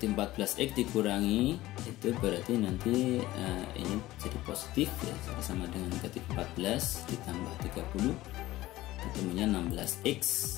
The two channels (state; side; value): quieter; right; 16.8 dB